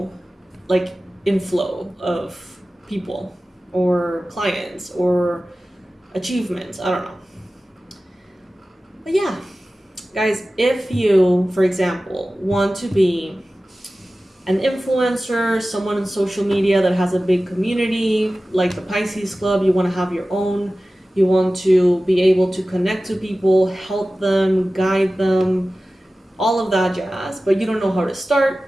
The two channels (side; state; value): both; normal; correlation 0.96